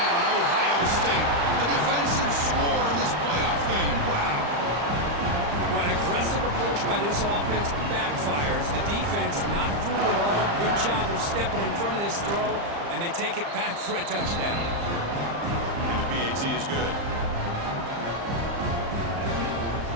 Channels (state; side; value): late; left; 35 ms